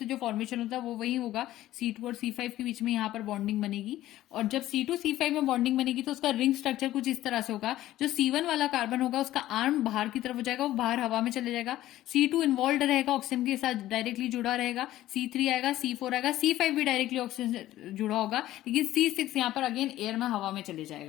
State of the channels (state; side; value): quieter; right; 14.5 dB